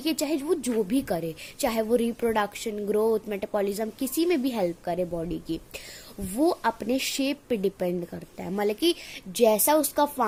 है, चाहे वो जो भी करे, चाहे वो रिप्रोडक्शन, ग्रोथ, मेटाबॉलिज्म, किसी में भी हेल्प करे बॉडी की, वो अपने शेप पे डिपेंड करता है। मतलब कि जैसा उसका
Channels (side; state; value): both; identical; correlation 1.00